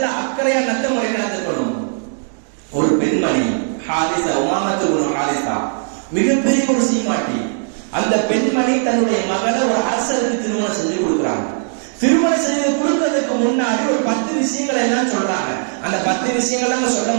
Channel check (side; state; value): left; silent; digital silence